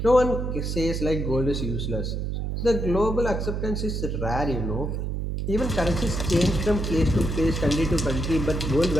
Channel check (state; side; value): noise; right; hum, 2 dB below the sound